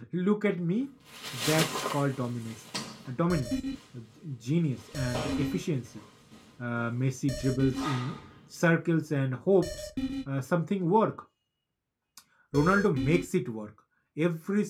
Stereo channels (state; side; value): identical; both; correlation 1.00